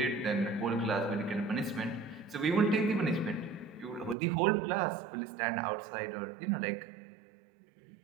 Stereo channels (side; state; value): left; drops out; at 4.2 s